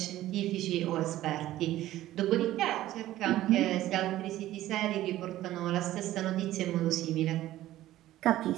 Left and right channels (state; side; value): quieter; left; 14.6 dB